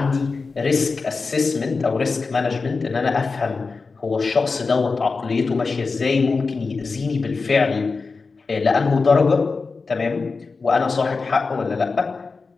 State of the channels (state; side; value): quieter; right; 4.3 dB